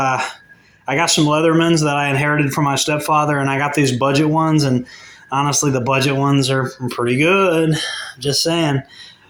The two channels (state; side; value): identical; both; correlation 1.00